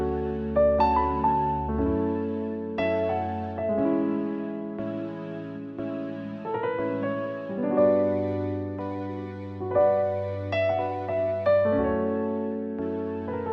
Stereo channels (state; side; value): identical; both; correlation 1.00